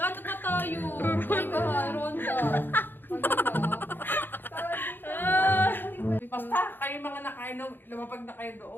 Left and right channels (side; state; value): right; late; 0.096 ms